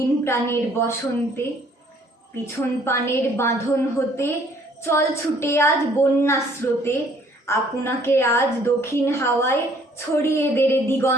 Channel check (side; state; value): both; normal; correlation 0.60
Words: প্রাণের বসন্তে। পিছন পানের বাঁধন হতে চল ছুটে আজ বন্যা স্রোতে, আপনাকে আজ দক্ষিণ হাওয়ায় ছড়িয়ে দেরে